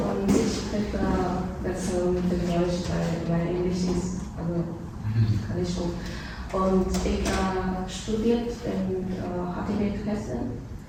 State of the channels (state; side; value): identical; both; correlation 1.00